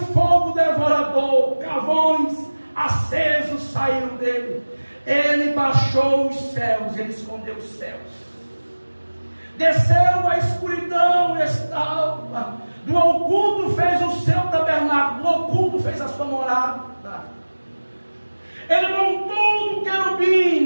fogo devorador, carvões acesos saíram dele. Ele baixou os céus, ele escondeu os céus, desceu a escuridão e estava, do oculto fez o seu tabernáculo, do oculto fez a sua morada. Ele montou um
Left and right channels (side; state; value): both; inverted; correlation -1.00